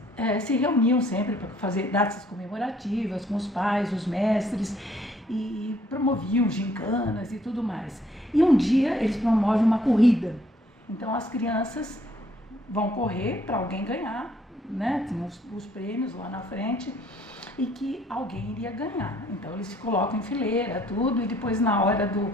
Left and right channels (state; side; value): normal; both; correlation 0.64